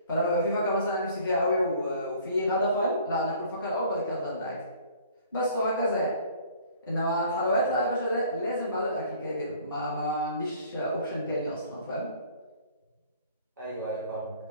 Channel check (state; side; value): inverted; both; correlation -0.52